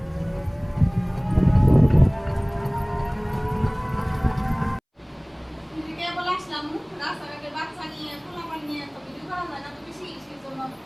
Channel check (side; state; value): both; identical; correlation 1.00